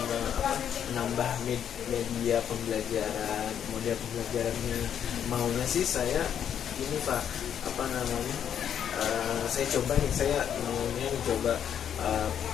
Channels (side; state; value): right; quieter; 9.0 dB